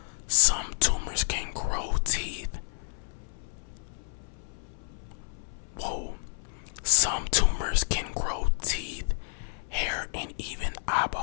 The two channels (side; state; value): right; silent; 58 dB below the other